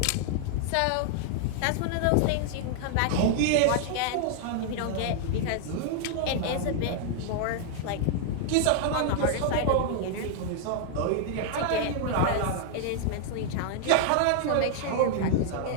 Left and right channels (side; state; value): both; different; correlation -0.01